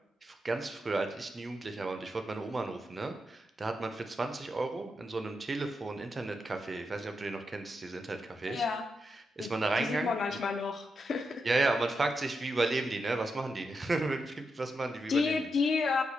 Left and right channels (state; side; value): normal; both; correlation 0.85